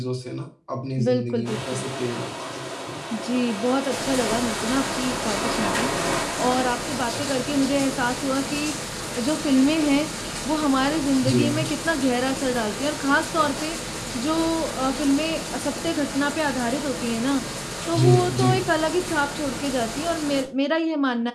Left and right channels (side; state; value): both; identical; correlation 1.00